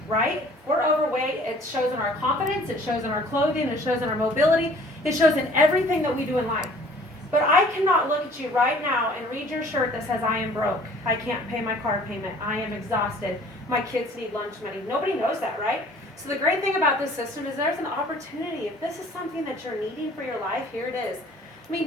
right? We're overweight, it shows in our confidence, it shows in our clothing, it shows in our mobility, it shows in everything that we do in life. But I cannot look at you right now and read your shirt that says, I am broke, I can't pay my car payment, I am exhausted, my kids need lunch money. Nobody knows that, right? So the great thing about this system is there's an opportunity. If this is something that you're needing for your life, here it is. I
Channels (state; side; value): normal; both; correlation 0.52